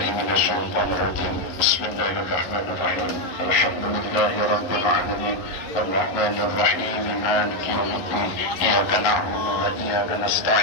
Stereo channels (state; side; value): late; right; 11 ms